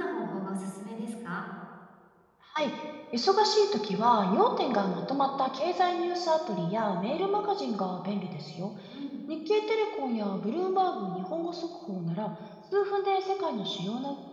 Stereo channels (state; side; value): identical; both; correlation 1.00